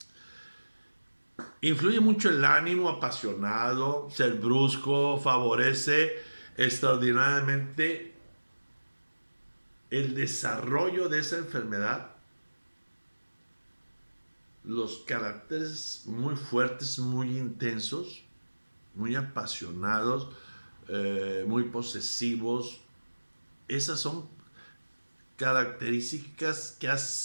Influye mucho el ánimo apasionado, ser brusco, favorece extraordinariamente el desarrollo de esa enfermedad, los caracteres muy fuertes, muy intensos, muy apasionados, muy posesivos. Esas son características que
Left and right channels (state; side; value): inverted; both; correlation -1.00